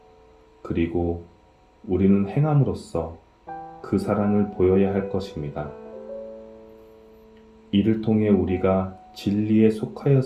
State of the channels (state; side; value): identical; both; correlation 1.00